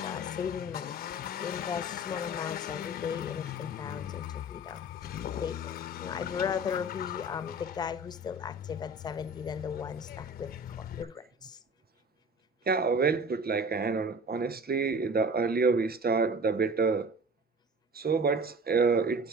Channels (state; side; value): normal; both; correlation 0.40